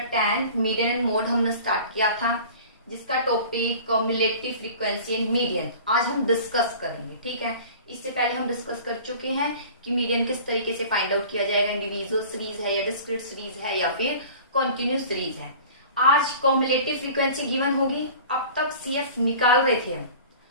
10 median and mode हमने start किया था, जिसका topic cumulative frequency and median आज हम discuss करेंगे। ठीक है, इससे पहले हम डिस्कस कर चुके हैं कि मीडियन किस तरीके से फाइंड आउट किया जाएगा, इंडिविजुअल सीरीज है या डिस्क्रीट सीरीज है या फिर कॉन्टिन्यूस सीरीज है। आज कम्युलेटिव फ्रीक्वेंसी गिवन होगी। अब तक CF निकाल रहे थे हम,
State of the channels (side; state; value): both; inverted; correlation -0.42